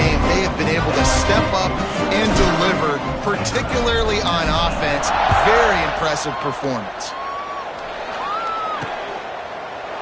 they have been able to step up and deliver, particularly on offense. Very impressive performance.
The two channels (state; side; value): identical; both; correlation 1.00